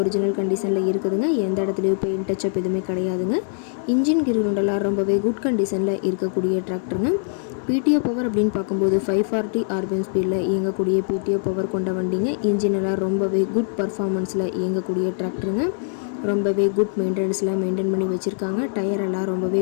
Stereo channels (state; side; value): silent; right; digital silence